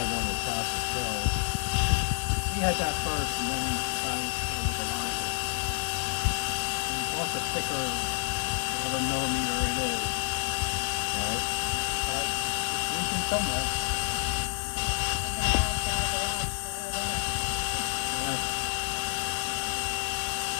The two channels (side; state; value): right; silent; digital silence